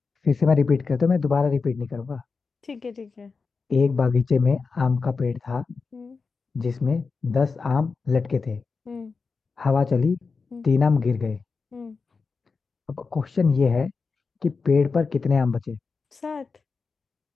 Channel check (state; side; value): quieter; right; 4.7 dB